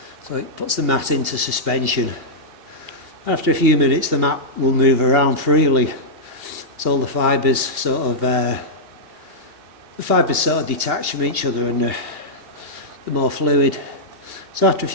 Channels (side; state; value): left; late; 2.6 ms